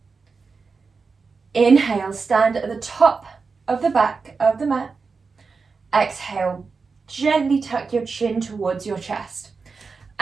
Inhale, stand at the top of the back of the mat. Exhale, gently tuck your chin towards your chest.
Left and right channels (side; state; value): left; quieter; 4.7 dB